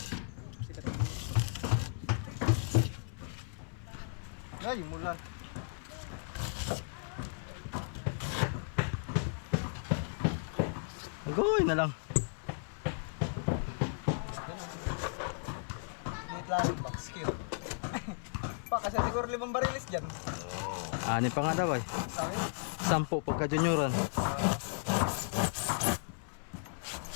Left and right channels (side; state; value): right; silent; 54 dB below the other